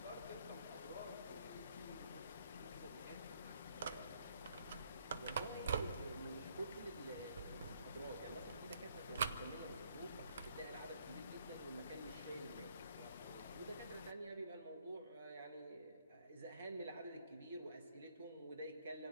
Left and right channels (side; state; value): both; inverted; correlation -0.68